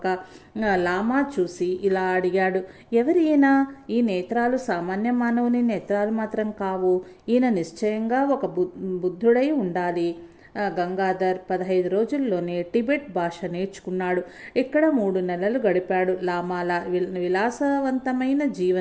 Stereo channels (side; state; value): both; identical; correlation 1.00